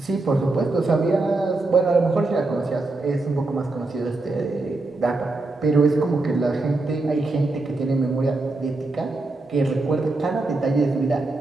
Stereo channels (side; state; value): left; quieter; 3.2 dB